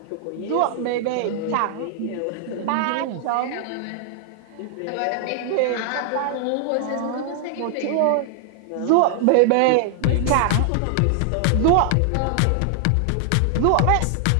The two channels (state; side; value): different; both; correlation 0.00